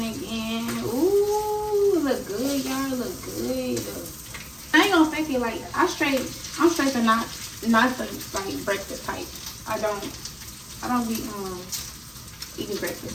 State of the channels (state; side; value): identical; both; correlation 1.00